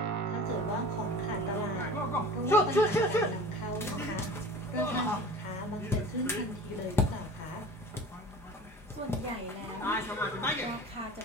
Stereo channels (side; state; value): both; normal; correlation 0.39